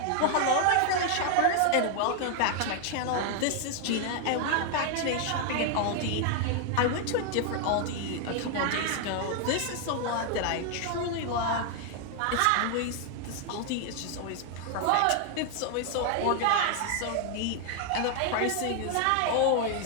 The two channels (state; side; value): different; both; correlation 0.00